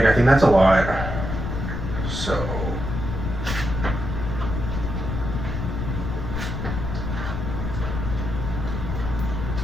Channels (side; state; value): left; noise; rumble, 3 dB below the sound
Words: I think that's a lot. So.